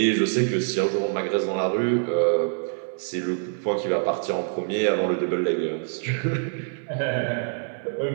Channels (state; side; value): silent; left; 61 dB below the other